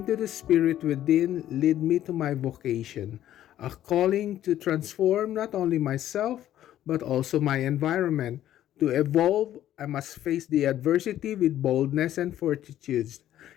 to the spirit within led me to my vocation, a calling to transform not only myself, but also my environment. To evolve, I must face the adversity with boldness and fortitude.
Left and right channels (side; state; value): right; quieter; 12.3 dB